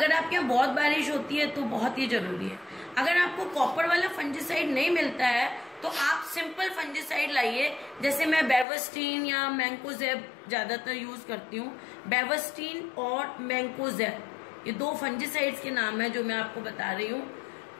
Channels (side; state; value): right; drops out; at 8.7 s